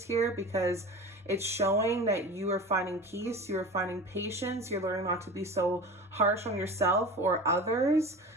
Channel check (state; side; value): normal; both; correlation 0.34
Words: here, because it's showing that you are finding peace, you're finding patience, you're learning not to be so harsh on yourself or others.